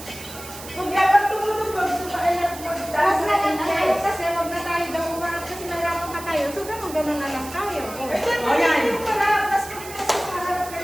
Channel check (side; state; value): right; noise; hiss, 14 dB below the sound